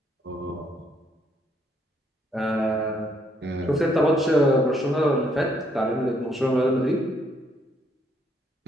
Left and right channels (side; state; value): both; normal; correlation 0.70